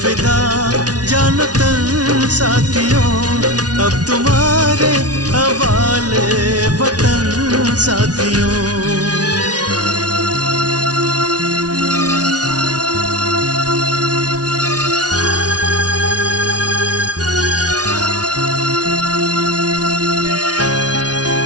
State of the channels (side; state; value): left; late; 0.69 ms